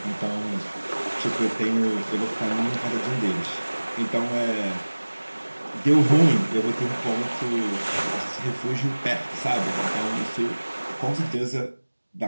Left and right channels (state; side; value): inverted; both; correlation -1.00